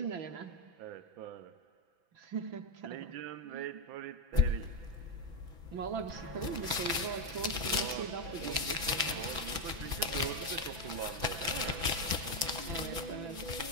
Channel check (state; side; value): late; left; 6.0 ms